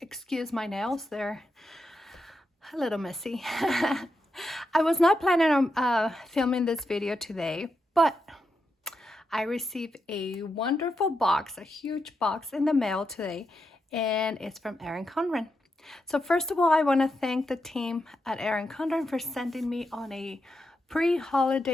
excuse my nails, they're a little messy. I was not planning on filming this video today, but I received a wonderful box, a huge box in the mail today, and it's from Erin Condren. So first of all, I want to thank the team at Erin Condren for sending me on a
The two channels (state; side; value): normal; both; correlation 0.85